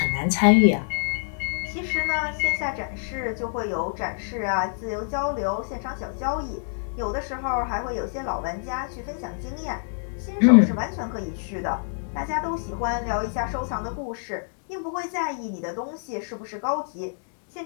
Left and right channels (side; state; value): right; silent; digital silence